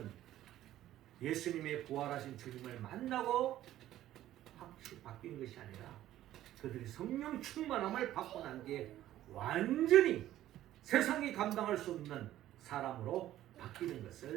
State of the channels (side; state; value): left; quieter; 13.4 dB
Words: 예수님의 부활하신 주님을 만나고 확실히 바뀐 것이 아니라 그들이 성령 충만함을 받고 난 뒤에 완전히 세상이 감당할 수 없는 사람으로 바뀌는